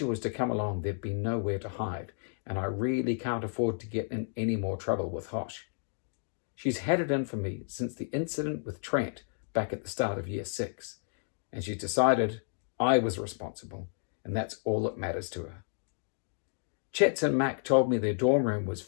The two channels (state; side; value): silent; right; digital silence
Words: was to come along, there'd be nowhere to hide, and I really can't afford to get in any more trouble with Hosh. She's had it in for me since the incident with Trent back at the start of year 6, and she's decided I was responsible, and that's all that matters to her. Chet and Mac told me their dorm room was